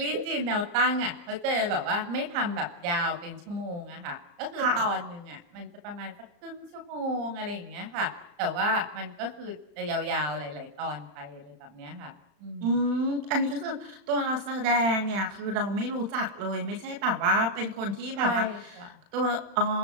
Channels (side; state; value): left; late; 35 ms